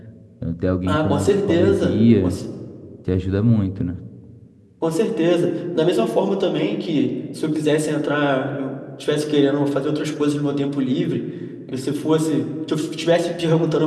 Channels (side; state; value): both; identical; correlation 1.00